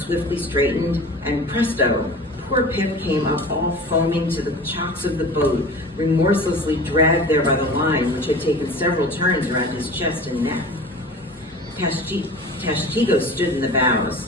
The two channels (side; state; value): both; normal; correlation 0.38